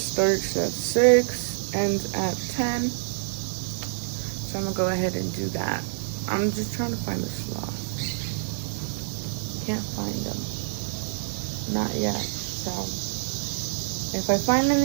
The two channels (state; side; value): silent; left; 60 dB below the other